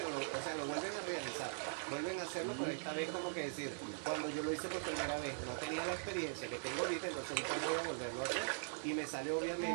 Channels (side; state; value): left; silent; digital silence